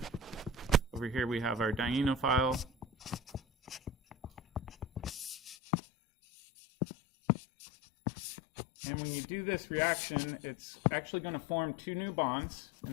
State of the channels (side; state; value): right; drops out; at 5.6 s